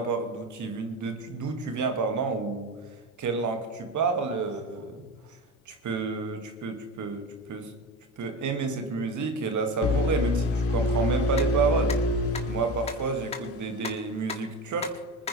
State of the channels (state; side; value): normal; both; correlation 0.26